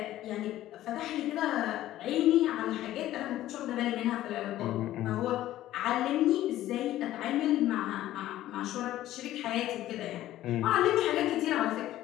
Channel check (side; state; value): right; quieter; 14.1 dB